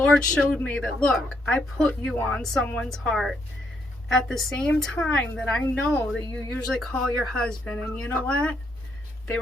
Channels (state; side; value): normal; both; correlation 0.75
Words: showed me that, look, I put you on someone's heart at the same time that I know that you usually call your husband. And you know what? They